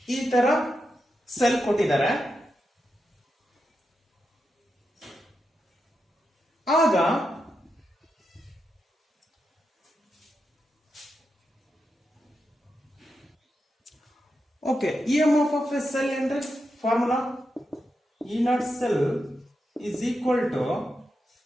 ಈ ತರ cell ಕೊಟ್ಟಿದ್ದಾರೆ. ಆಗ okay EMF of a cell ಅಂದ್ರೆ formula E0 cell is equal to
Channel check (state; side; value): normal; both; correlation 0.87